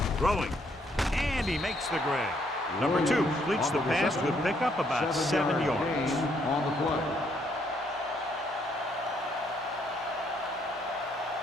throwing, and he makes the grab. Number 2 completes the pass to pick up about 7 yards. On the play.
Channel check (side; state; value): both; normal; correlation 0.71